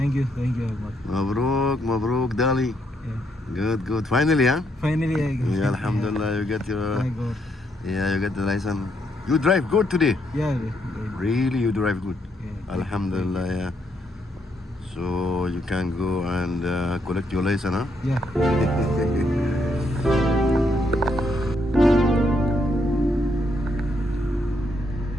you very much. Mabruk, Dali. Yeah. Good. Finally, huh? Finally, I got. Yeah, Alhamdulillah, you get your. I got. You get the license. You drive good today. Yeah. Really, you drive good. Yeah. Alhamdulillah, yeah. So you can go and collect your license, huh? Yeah.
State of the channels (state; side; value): normal; both; correlation 0.75